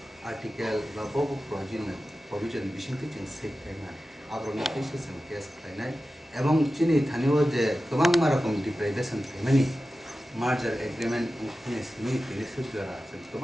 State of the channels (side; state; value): both; normal; correlation 0.94